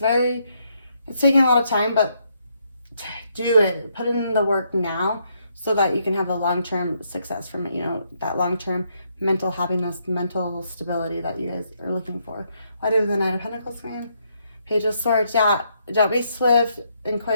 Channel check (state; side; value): inverted; both; correlation -0.75